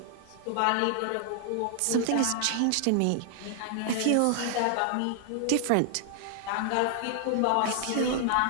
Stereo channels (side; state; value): both; different; correlation -0.01